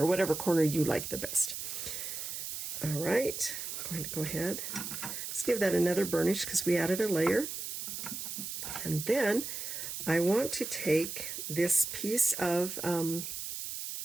whatever corner you like the best. All right, I'm going to go ahead. Let's give that another burnish because we added a layer. And then I want to take this piece of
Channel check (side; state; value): right; noise; hiss, 6 dB below the sound